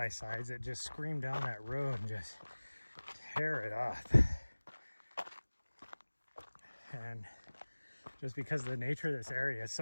that just scream down that road and just tear it up. And just because of the nature of this area, it's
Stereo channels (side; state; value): both; inverted; correlation -1.00